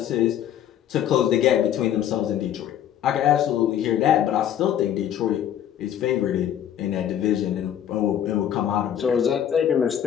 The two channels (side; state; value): right; quieter; 10.2 dB